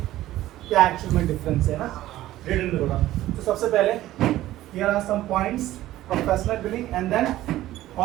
क्या एक्चुअल में डिफरेंस है ना, रिटन में थोड़ा। तो सबसे पहले here are some points, professional billing and then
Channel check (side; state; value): left; quieter; 14.9 dB